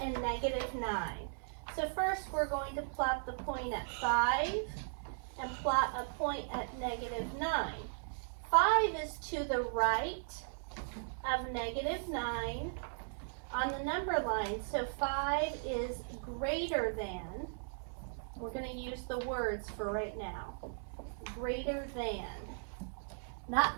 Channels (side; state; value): left; silent; digital silence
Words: -9. So first we're going to plot the point at 5 and plot a point at -9. 5 is to the right of -9 on the number line. So 5 is greater than, we're going to use the words for right now. Greater than.